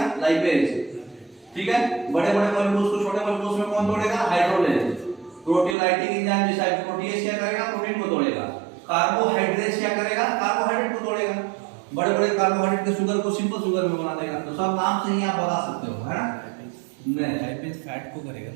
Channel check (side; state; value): left; drops out; at 5.8 s